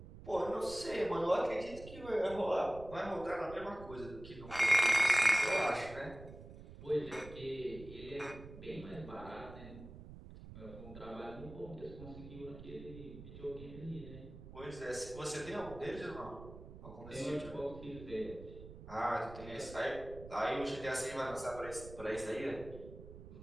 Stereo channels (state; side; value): noise; right; rumble, 14 dB below the sound